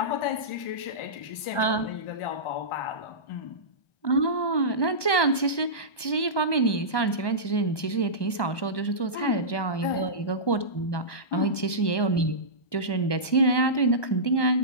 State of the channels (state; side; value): late; right; 1.2 ms